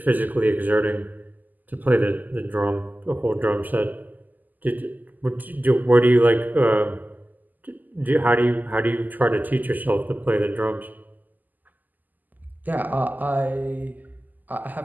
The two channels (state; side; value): late; left; 0.084 ms